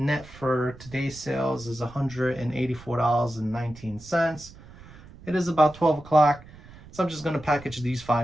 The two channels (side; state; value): right; noise; rumble, 20 dB below the sound